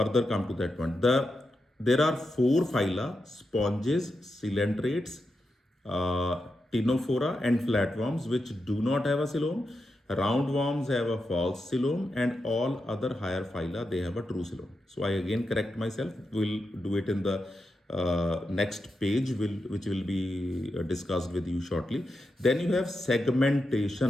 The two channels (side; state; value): both; normal; correlation 0.87